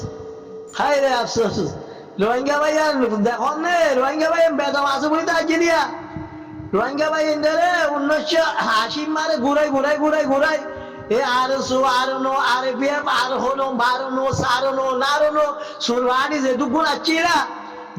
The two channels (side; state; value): both; identical; correlation 1.00